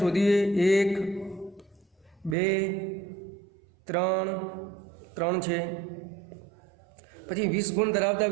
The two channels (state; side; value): drops out; left; at 2.4 s